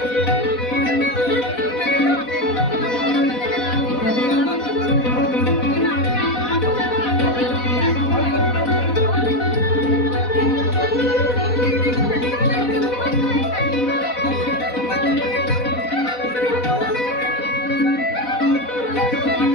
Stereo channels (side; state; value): right; late; 4.1 ms